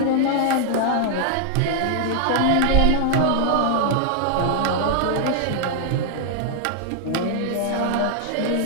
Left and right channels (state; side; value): different; both; correlation 0.00